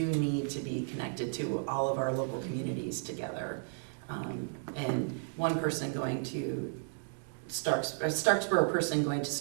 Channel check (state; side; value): silent; left; digital silence